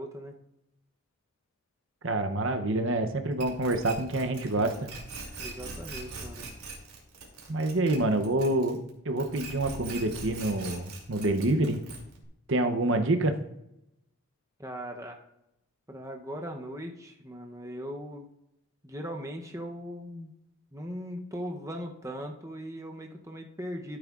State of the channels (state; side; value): normal; both; correlation 0.29